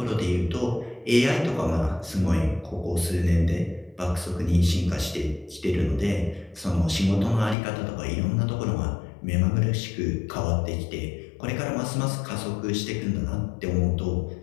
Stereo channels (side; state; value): right; drops out; at 7.6 s